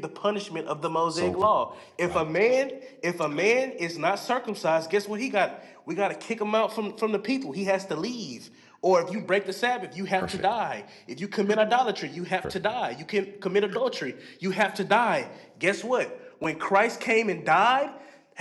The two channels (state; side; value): identical; both; correlation 1.00